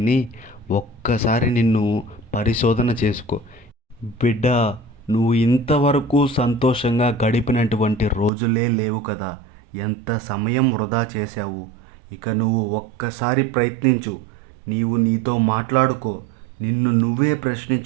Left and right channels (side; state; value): left; drops out; at 8.3 s